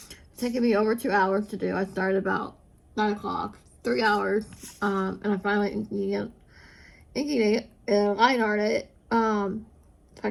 taking me over 2 hours to do. I started about 9 o'clock, 3 hours, and I'm finally inking it and line art it, so I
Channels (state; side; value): identical; both; correlation 1.00